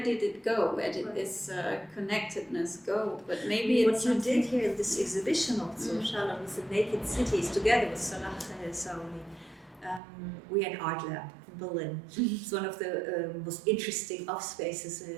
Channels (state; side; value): drops out; left; at 10.0 s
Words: did it go? Where did this connectedness go? But maybe what you did here in this exhibition also, Shalom, with the naked cities, together with Salah Saouli. We are an art lab in Berlin. It's one of the most interesting off spaces,